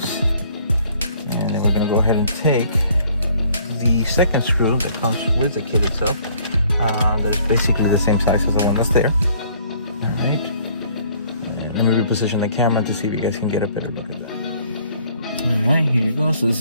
And then we're gonna go ahead and take the second screw that comes with the kit itself. That is basically the same size as the one that's there. All right. And let me reposition the camera to see if you guys can get a better look at that. All right, here you go. So this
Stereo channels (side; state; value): both; inverted; correlation -0.59